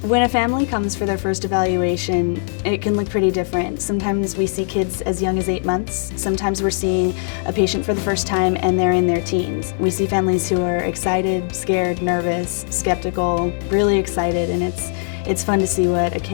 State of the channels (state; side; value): silent; right; 66 dB below the other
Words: When a family comes for their first evaluation, it can look pretty different. Sometimes we see kids as young as 8 months. Sometimes we're seeing a patient for the first time and they're in their teens. We see families who are excited, scared, nervous, skeptical, really excited, and it's fun to see what a